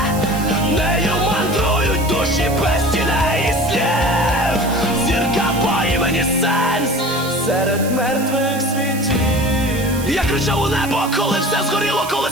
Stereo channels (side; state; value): right; noise; hiss, 12 dB below the sound